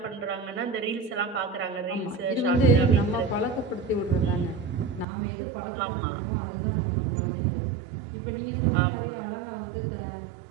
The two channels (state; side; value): drops out; left; at 5.1 s